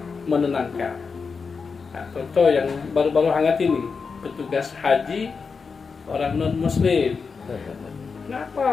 menenangkan. Nah, contoh yang baru-baru hangat ini, petugas haji orang non-muslim.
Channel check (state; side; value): quieter; right; 5.2 dB